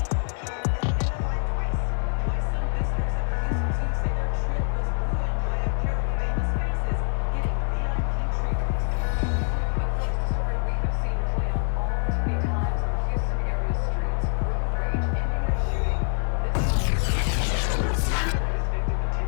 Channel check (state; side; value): silent; right; 58 dB below the other